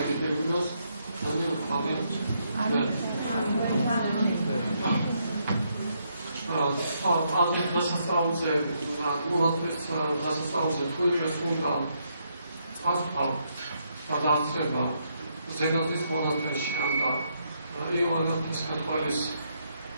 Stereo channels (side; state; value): both; inverted; correlation -0.76